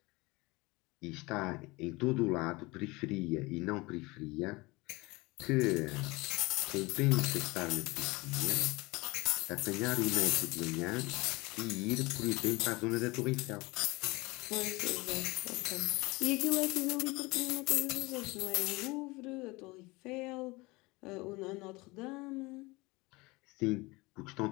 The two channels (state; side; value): quieter; right; 23.4 dB